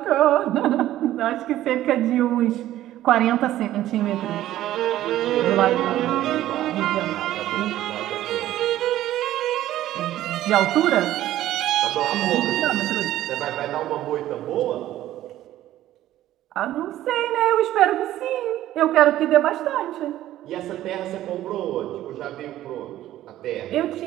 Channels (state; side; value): quieter; left; 13.7 dB